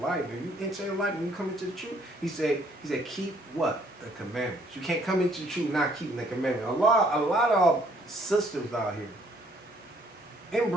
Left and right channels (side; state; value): both; normal; correlation 0.64